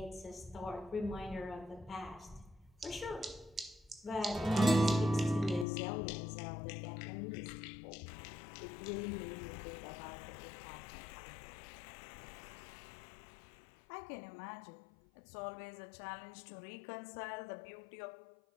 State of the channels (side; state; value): right; drops out; at 5.7 s